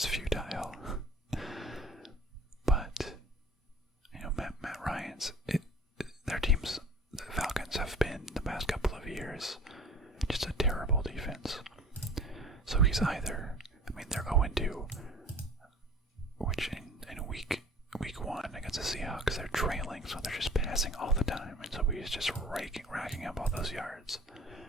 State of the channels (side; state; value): both; normal; correlation 0.46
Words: futile. But Matt Ryan's their teams, the Falcons, have been the past couple of years just a terrible defense. So he's either, they're 0-2, which in week 1 against the Seahawks they're trailing, so they're just passing all the time, and so he's just racking up all those yards.